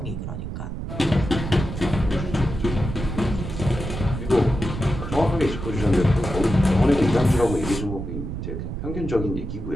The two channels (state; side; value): noise; right; rumble, 6 dB below the sound